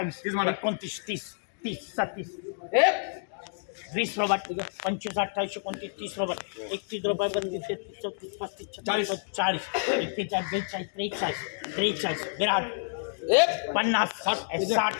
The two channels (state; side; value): silent; right; digital silence